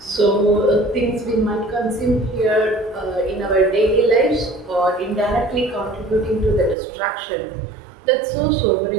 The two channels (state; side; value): drops out; left; at 6.8 s